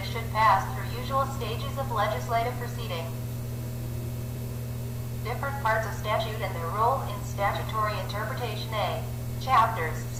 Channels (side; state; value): both; identical; correlation 1.00